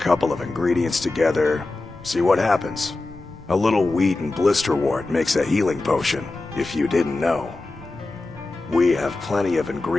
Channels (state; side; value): quieter; right; 3.2 dB